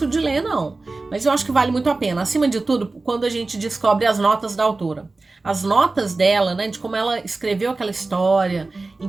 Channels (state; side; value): quieter; left; 3.5 dB